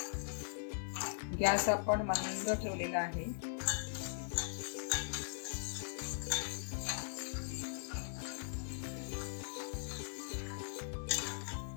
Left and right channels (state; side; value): silent; right; 51 dB below the other